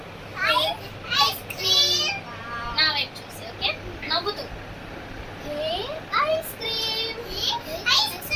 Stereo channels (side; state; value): both; identical; correlation 1.00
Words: Ice cream. నా వైపు చూసి ఓకే, నవ్వుతూ. Ice cream. Ice